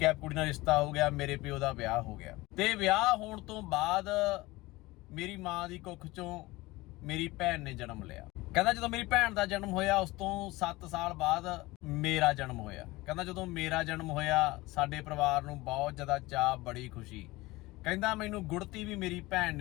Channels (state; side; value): quieter; right; 20.5 dB